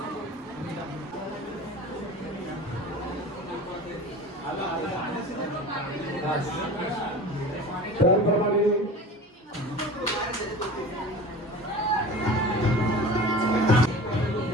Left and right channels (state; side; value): normal; both; correlation 0.37